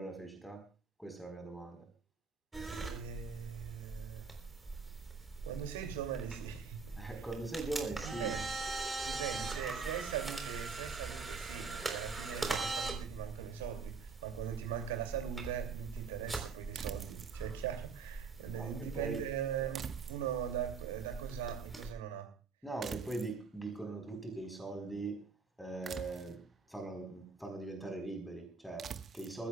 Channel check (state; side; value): quieter; left; 5.1 dB